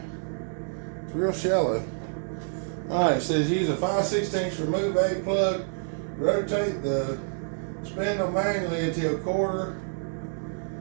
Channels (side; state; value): left; silent; 60 dB below the other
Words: It's real shallow. Alright, it says use a 5/16 remove A plug, rotate the spindle manually until quarter